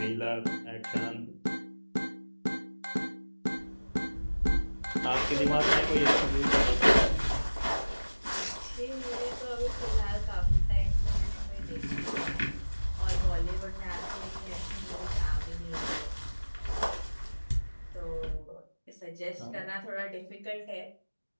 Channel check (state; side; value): inverted; both; correlation -1.00